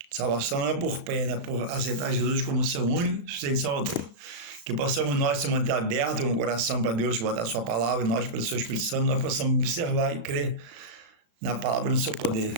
Salvação não é por pena, é por aceitar Jesus como seu único e suficiente Salvador. Que possamos nós se manter abertos com o coração para Deus, botar a sua palavra, e nós, pelo seu Espírito Santo, nós possamos observar e crer na palavra e no seu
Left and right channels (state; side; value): late; left; 36 ms